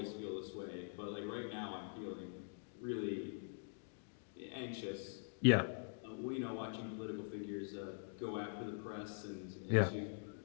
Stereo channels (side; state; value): right; silent; digital silence